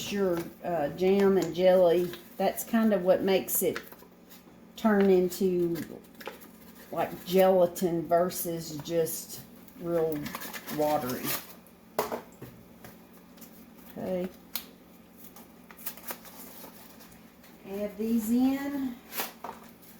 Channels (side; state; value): both; identical; correlation 1.00